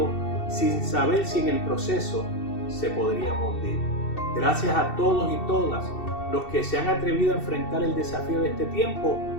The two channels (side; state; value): right; late; 2.7 ms